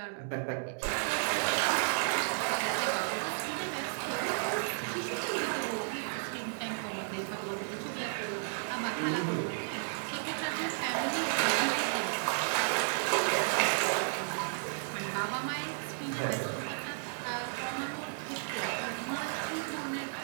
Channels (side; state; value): left; silent; 56 dB below the other